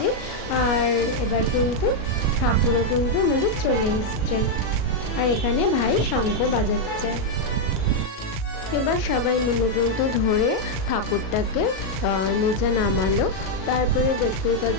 আর এবার কিন্তু ঠাকুরও কিন্তু আমাদের চলে এসছে। আর এখানে ভাই শঙ্খ বাজাচ্ছে। এবার সবাই মিলে কিন্তু ধরে ঠাকুরটাকে নিচে নামালো। তারপরে দেখতেই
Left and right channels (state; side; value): late; right; 37 ms